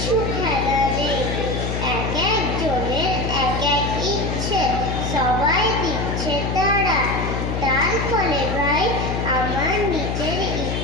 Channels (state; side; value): noise; left; hum, 2 dB below the sound